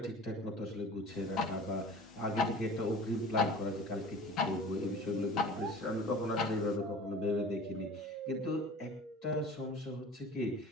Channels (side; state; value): both; normal; correlation 0.41